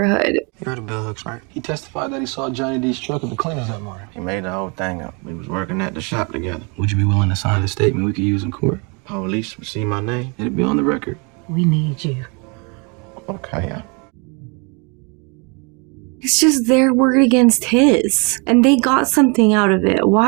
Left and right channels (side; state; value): left; quieter; 32.6 dB